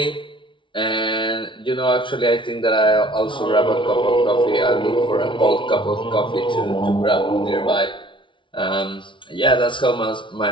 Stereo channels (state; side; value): late; right; 0.24 ms